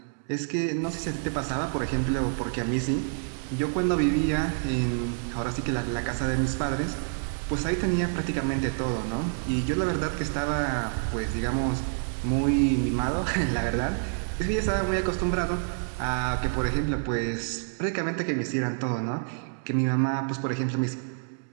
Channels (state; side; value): silent; left; digital silence